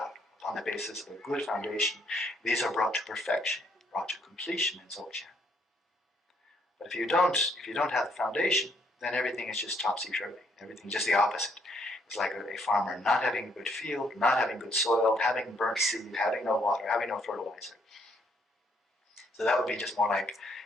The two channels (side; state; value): both; normal; correlation 0.70